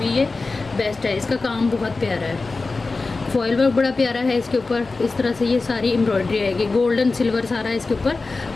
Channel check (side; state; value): right; quieter; 3.8 dB